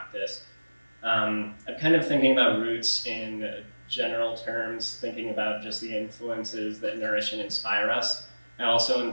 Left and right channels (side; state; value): both; inverted; correlation -1.00